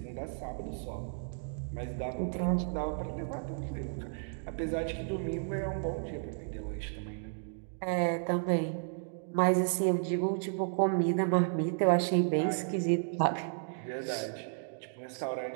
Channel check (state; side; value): silent; left; digital silence